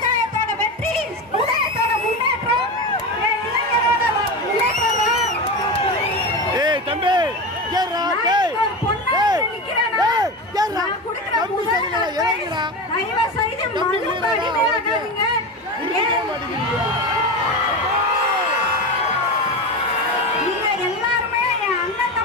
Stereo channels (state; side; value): normal; both; correlation 0.22